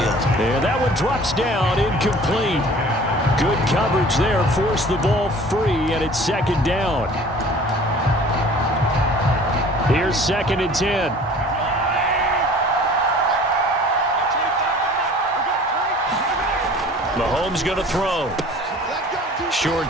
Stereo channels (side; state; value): both; normal; correlation 0.47